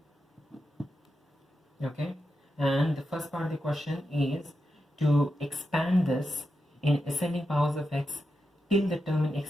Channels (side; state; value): both; normal; correlation 0.88